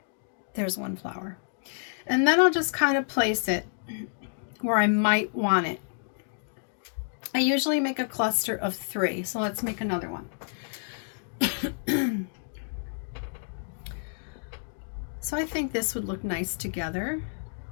There's one flower. And then I'll just kind of place it where I might want it. I usually make a cluster of 3, so let's make another one. So I think this would look nice together.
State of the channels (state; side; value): silent; right; digital silence